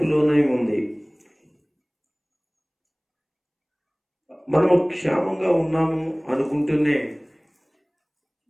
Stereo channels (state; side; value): identical; both; correlation 1.00